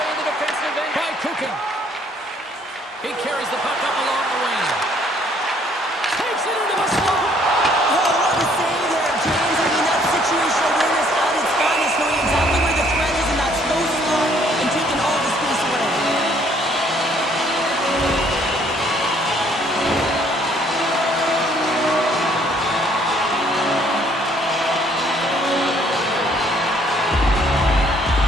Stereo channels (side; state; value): both; normal; correlation 0.63